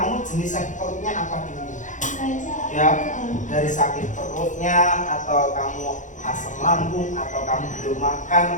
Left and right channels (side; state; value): right; late; 0.36 ms